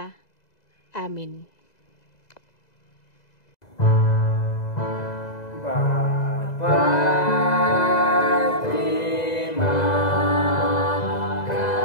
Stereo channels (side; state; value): right; late; 2.0 ms